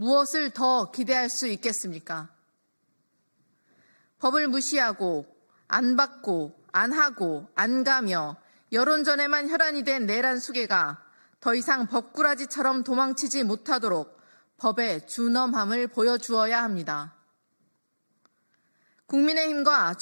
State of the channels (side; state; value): both; inverted; correlation -1.00